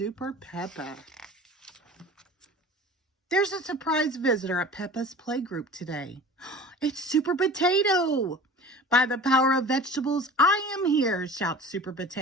Peppa. There's a surprise visitor at Peppa's playgroup today. It's Super Potato. By the power of vegetables, I am here, shouts Super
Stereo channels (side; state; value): both; normal; correlation 0.40